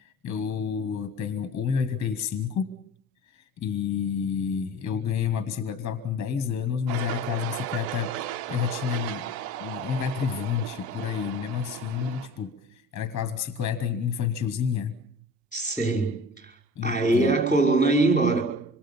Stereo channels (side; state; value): both; normal; correlation 0.40